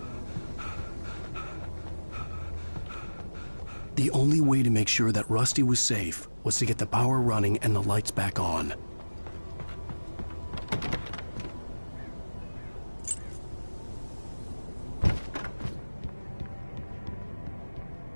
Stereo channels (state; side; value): inverted; both; correlation -1.00